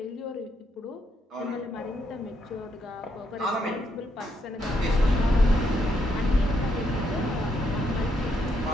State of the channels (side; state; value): both; normal; correlation 0.76